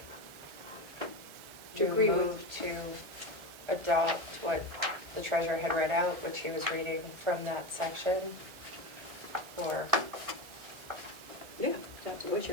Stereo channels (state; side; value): late; left; 1.4 ms